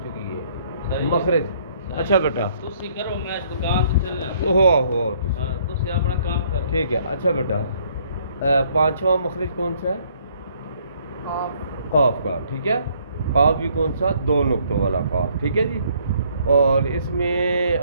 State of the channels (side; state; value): both; inverted; correlation -0.64